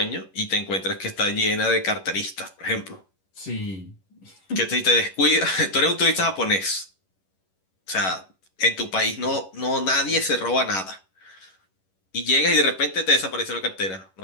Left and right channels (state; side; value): late; right; 11 ms